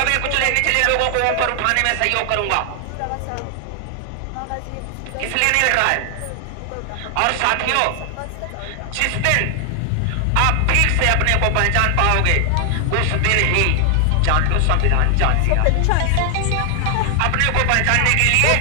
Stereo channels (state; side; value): different; both; correlation 0.00